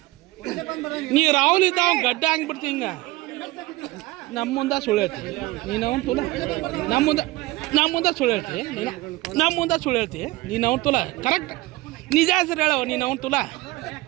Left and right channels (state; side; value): quieter; left; 19.9 dB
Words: ನೀ ರಾಹುಲ್ ಇದ್ದ ಅವ್ನು ಗಡ್ಡ ಹಂಗ್ಬಿಡ್ತಿ ಹಿಂಗ ನಮ್ಮ ಮುಂದೆ ಸುಳ್ಳು ಹೇಳ್ತಿ ನೀನು ಅವ್ನು ತುಲ ನಮ್ಮ ಮುಂದೆ ಸುಳ್ಳು ಹೇಳ್ತಿ ನಮ್ಮ ಮುಂದೆ ಸುಳ್ಳು ಹೇಳ್ತಿ ನೀನು ಅವ್ನು ತುಲ ಕರೆಕ್ಟ್ ನಿಜ ಹೆಸರು ಹೇಳವ ನೀನು ಅವ್ನು ತುಲ